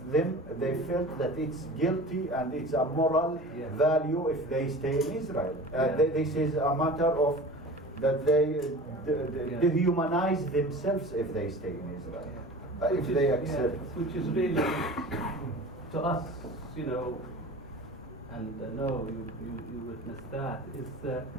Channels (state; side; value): normal; both; correlation 0.38